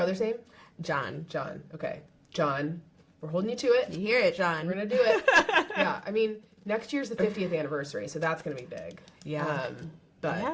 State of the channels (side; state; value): both; identical; correlation 1.00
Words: name? John. John. Okay, John. We're holding you to it. You hear it, John? We're gonna do it. Yeah, I mean, next year's the 50th anniversary, so that's gonna be big. Yeah.